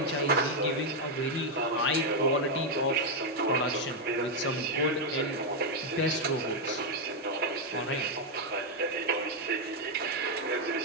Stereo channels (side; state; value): both; normal; correlation 0.01